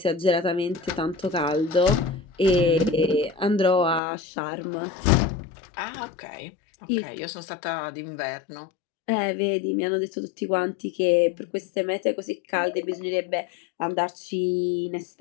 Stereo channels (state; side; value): drops out; right; at 4.0 s